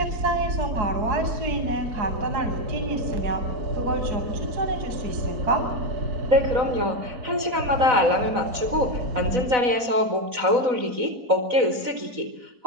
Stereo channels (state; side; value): late; left; 4.0 ms